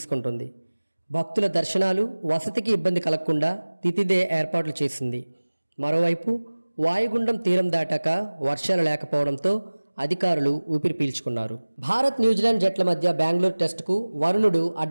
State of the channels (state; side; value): inverted; both; correlation -1.00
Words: భక్తుల దర్శనాలు, వసతికి ఇబ్బంది కలగకుండా తితిదే ఏర్పాట్లు చేసింది. మరోవైపు వాయుగుండం తీరం దాటాక వర్షాలు లేకపోవడంతో అధికారులు ఊపిరి పీల్చుకున్నారు. భారత్ న్యూజిలాండ్ జట్ల మధ్య బెంగళూరు టెస్టుకు వరుణుడు